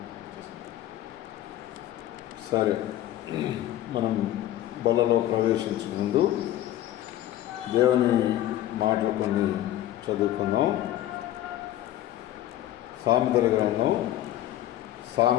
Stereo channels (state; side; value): quieter; right; 13.5 dB